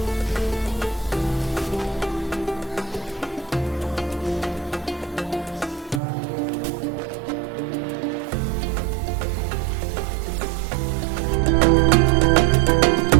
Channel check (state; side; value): drops out; left; at 6.0 s